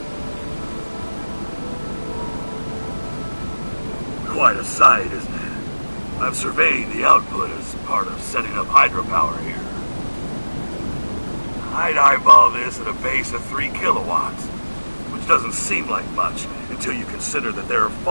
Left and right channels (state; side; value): inverted; both; correlation -1.00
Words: Quite a sight, isn't it? I've surveyed the output as part of setting up hydropower here. I'd eyeball this at a base of 3 kilowatts, which doesn't seem like much until you consider that there are